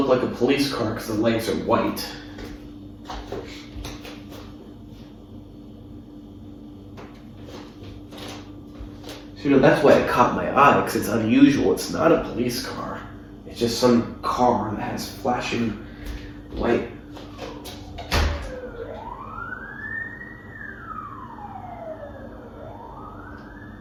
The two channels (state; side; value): identical; both; correlation 1.00